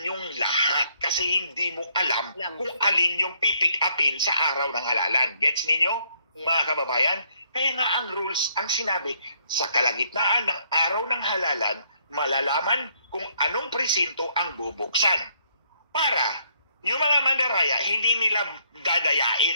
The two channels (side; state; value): both; inverted; correlation -0.69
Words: yung lahat kasi hindi mo alam kung alin yung pipick upin sa araw ng halalan. Gets ninyo, mga kababayan? Kaya nga ang rules, ang sinabi, sa kalagitnaan ng araw ng halalan, malalaman kung anong presinto ang bubuksan. Para yung mga mandaraya, hindi nila